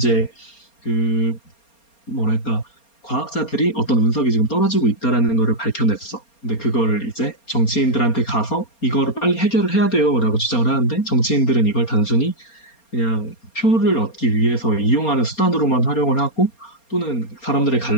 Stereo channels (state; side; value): late; right; 4.3 ms